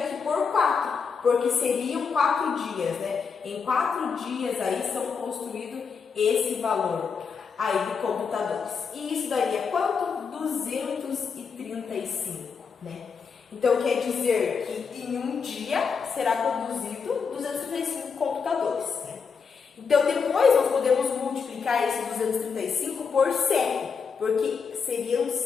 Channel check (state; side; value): quieter; right; 5.8 dB